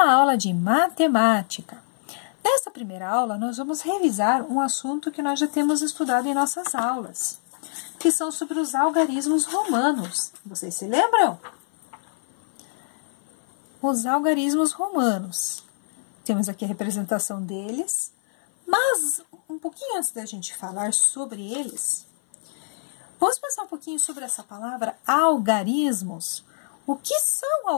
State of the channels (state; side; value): silent; right; 57 dB below the other